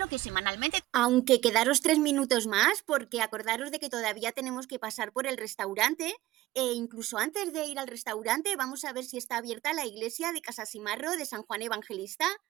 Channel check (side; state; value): left; quieter; 16.8 dB